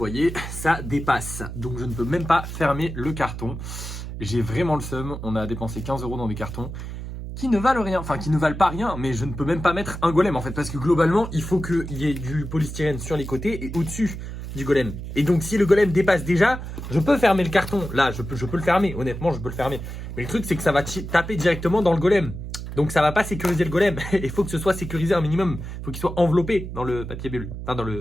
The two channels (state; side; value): noise; right; hum, 8 dB below the sound